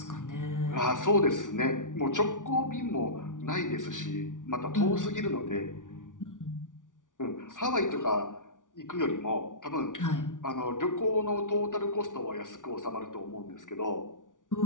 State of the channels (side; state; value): right; late; 0.88 ms